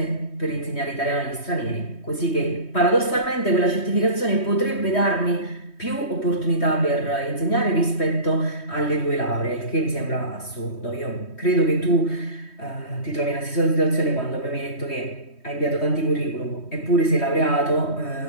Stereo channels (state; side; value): late; right; 3.2 ms